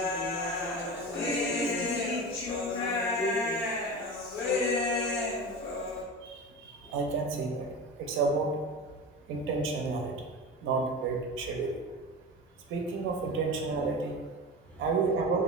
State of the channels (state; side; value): normal; both; correlation 0.28